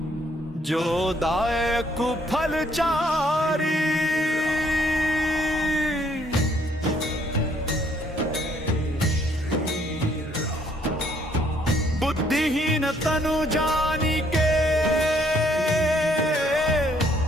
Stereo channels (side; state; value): both; normal; correlation 0.66